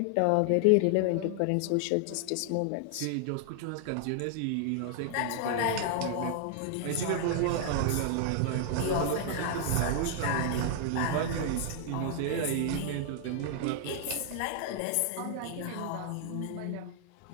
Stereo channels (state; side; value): different; both; correlation 0.00